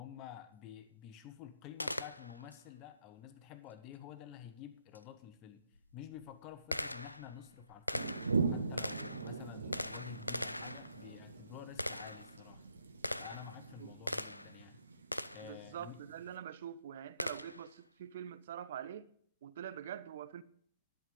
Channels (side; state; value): both; inverted; correlation -0.74